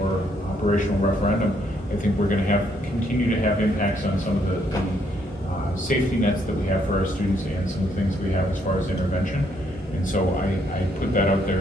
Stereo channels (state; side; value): normal; both; correlation 0.71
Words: or operational referendum, I think we're going to continue to have impacts on some of the safety nets that we have for our students and some of the things we have as far as intervention. And so I put that out there